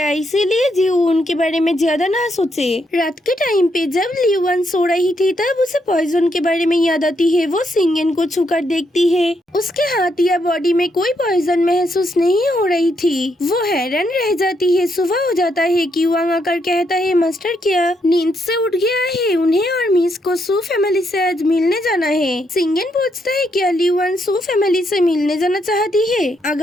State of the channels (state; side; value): normal; both; correlation 0.77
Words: इसीलिए जीव उनके बारे में ज्यादा ना सोचे। रात के टाइम पे जब लियोन सो रही थी तब उसे पॉइजन के बारे में याद आती है। वो सिंगन को छूकर देखती है, उसके हाथ या बॉडी में कोई पॉइजन महसूस नहीं हो रही थी। वो हैरान रह जाती है। सुबह हो जाता है। क्यूआंग आकर कहता है मास्टर क्या नींद से उठ गया है? उन्हें और मिस को सू फैमिली से आज मिलने जाना है। सिंगन पूछता है क्या लियोन सू फैमिली से मिलने जाना चाहती है?